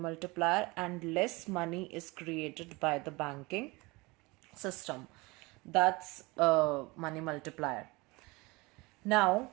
and less money is created by the banking system. That's money multiplier. Now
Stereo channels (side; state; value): left; quieter; 24.1 dB